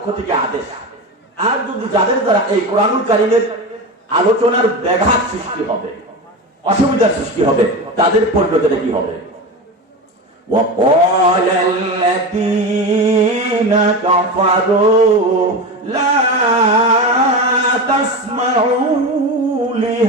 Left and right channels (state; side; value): normal; both; correlation 0.23